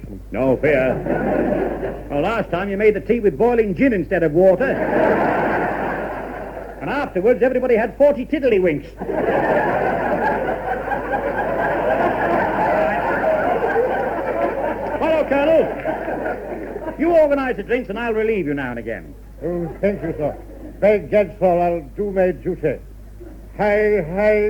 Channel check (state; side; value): identical; both; correlation 1.00